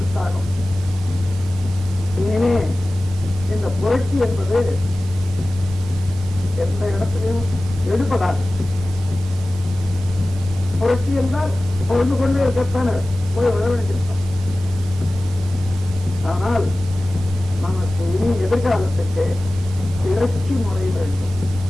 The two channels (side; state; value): both; normal; correlation 0.96